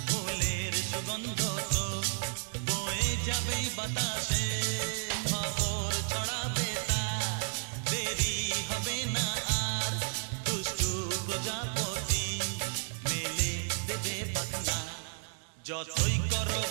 বাতাসে খবর ছড়াবে তার, দেরি হবে না আর, দুষ্টু প্রজাপতি মেলে দেবে পাখনা। যতই করো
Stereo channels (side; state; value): left; silent; digital silence